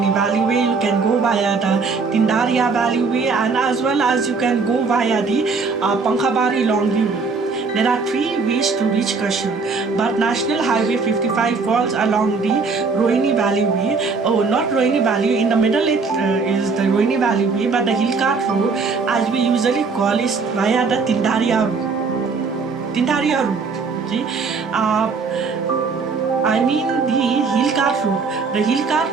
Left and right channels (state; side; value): quieter; left; 4.6 dB